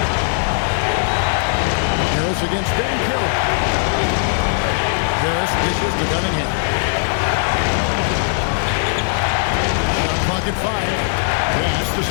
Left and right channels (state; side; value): silent; right; digital silence